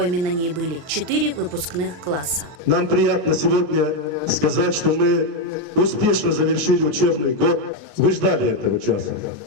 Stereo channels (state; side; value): late; left; 40 ms